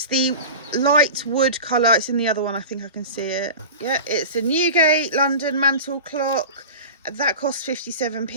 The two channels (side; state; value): both; inverted; correlation -0.33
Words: the light wood colour. It's in the other one. I think I can see it. Yeah, it's a Newgate London mantle clock. That cost